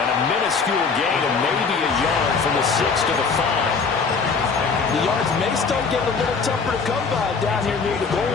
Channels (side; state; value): right; quieter; 5.0 dB